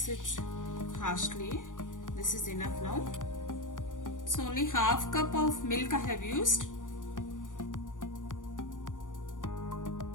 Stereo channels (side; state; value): right; late; 0.88 ms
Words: it harshly. This is enough now. So only half cup of milk I have used.